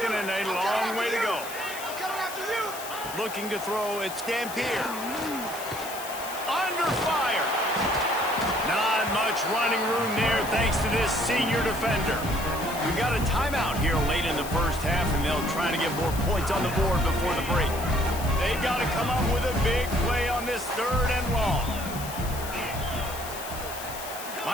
and a long way to go. Looking to throw, it's Dampier. Under fire. Not much running room there thanks to this senior defender. We've got a timeout here late in the 1st half, and they'll try to get more points on the board before the break. They've got to come up with a big play on this 3rd and long.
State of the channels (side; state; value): left; noise; hiss, 11 dB below the sound